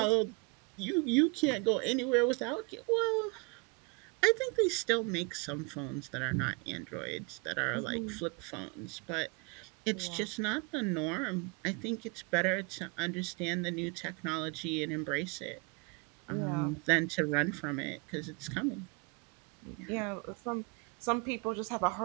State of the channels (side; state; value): left; quieter; 30.4 dB